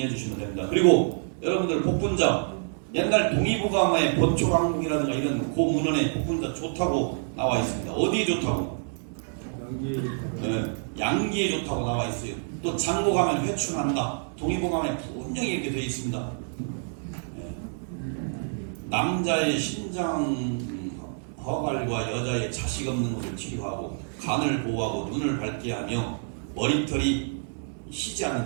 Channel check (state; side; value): silent; left; 60 dB below the other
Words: 주시면 됩니다. 그리고 여러분들 복분자, 옛날 동의보감의 본초강국이라든가 이런 고문헌에 복분자 좋다고 나와 있습니다. 어디에 좋다고? 양기에 좋다고 나와 있어요. 또 장고 가면 회춘한다. 동의보감에 분명히 이렇게 되어 있습니다. 남자의 신장 허갈과 여자의 자식 없는 것을 치료하고 간을 보호하고 눈을 밝게 하며 머리털이 희지